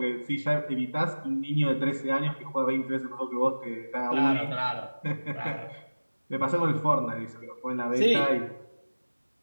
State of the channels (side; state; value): both; inverted; correlation -1.00